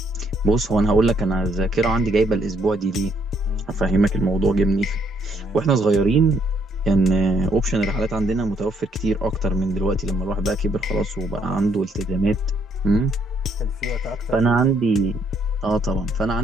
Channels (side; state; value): both; normal; correlation 0.70